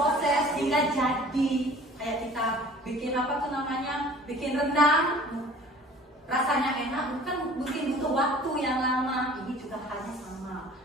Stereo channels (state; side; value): normal; both; correlation 0.47